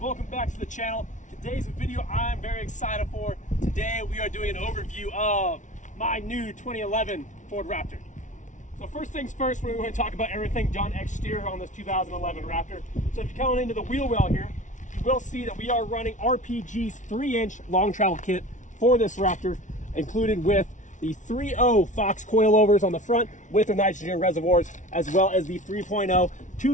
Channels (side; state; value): right; late; 0.37 ms